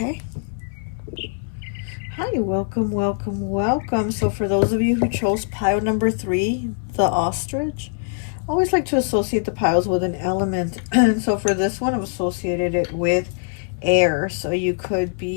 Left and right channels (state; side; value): silent; right; 64 dB below the other